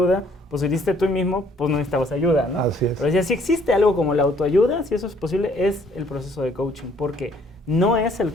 pues si hiciste tú mismo, pues no necesitabas ayuda, ¿no? Así es. Pero decía, si existe algo como la autoayuda, si eso es posible, es el proceso de coaching, porque no es el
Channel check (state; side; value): normal; both; correlation 0.62